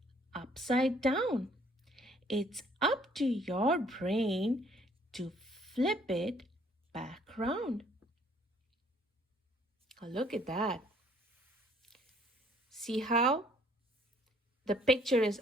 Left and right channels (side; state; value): both; normal; correlation 0.61